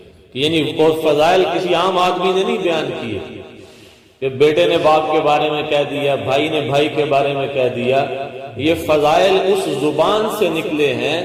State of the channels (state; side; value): identical; both; correlation 1.00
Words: یعنی وہ فضائل کسی عام آدمی نے نہیں بیان کیے کہ بیٹے نے باپ کے بارے میں کہہ دیا، بھائی نے بھائی کے بارے میں کہہ دیا۔ یہ فضائل اس زبان سے نکلے ہیں